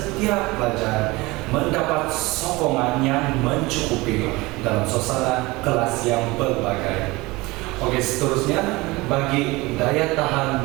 pelajar mendapat sokongan yang mencukupi dalam suasana kelas yang berbagai. Oke, seterusnya bagi daya tahan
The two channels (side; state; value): left; quieter; 22.0 dB